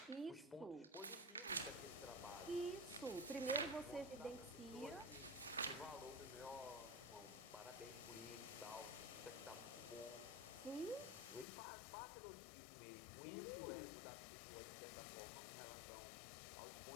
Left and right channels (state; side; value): drops out; right; at 11.5 s